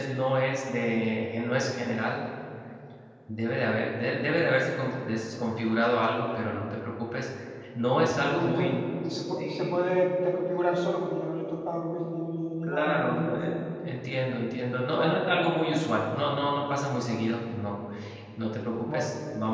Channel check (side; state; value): both; identical; correlation 1.00